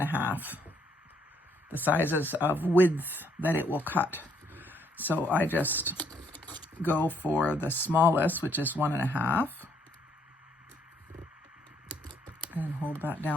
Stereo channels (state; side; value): normal; both; correlation 0.69